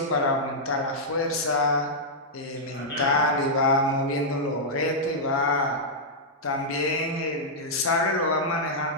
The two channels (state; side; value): normal; both; correlation -0.08